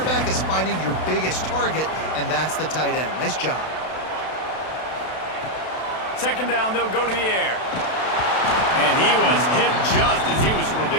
is finding your biggest target, and that's the tight end. Nice job. Second down, they'll go to the air. And he was Hit just as he was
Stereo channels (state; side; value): late; right; 32 ms